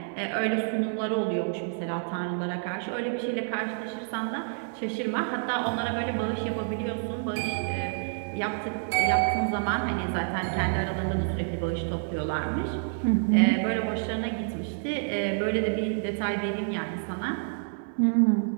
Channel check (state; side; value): silent; left; digital silence